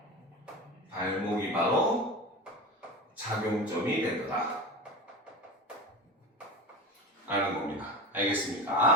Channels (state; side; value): normal; both; correlation 0.28